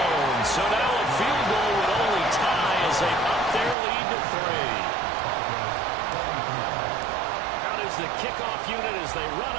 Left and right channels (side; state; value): left; drops out; at 3.8 s